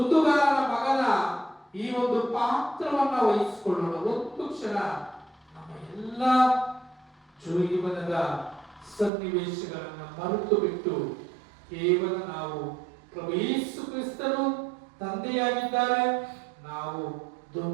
ಮಗನ ಈ ಒಂದು ಪಾತ್ರವನ್ನ ವಹಿಸಿಕೊಳ್ಳೋಣ. ಒಂದು ಕ್ಷಣ ನಮ್ಮ ಎಲ್ಲ ಜೀವನದ ಸನ್ನಿವೇಶಗಳನ್ನ ಮರೆತು ಬಿಟ್ಟು ಕೇವಲ ನಾವು ಪ್ರಭು ಯೇಸು ಕ್ರಿಸ್ತರು ತಂದೆಯಾಗಿದ್ದಾರೆ, ನಾವು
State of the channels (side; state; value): left; drops out; at 9.1 s